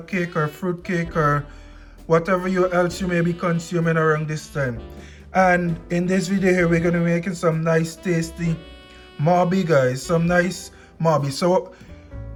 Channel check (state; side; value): identical; both; correlation 1.00